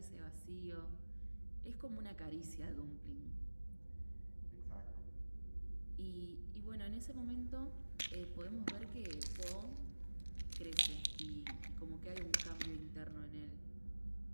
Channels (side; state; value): both; inverted; correlation -1.00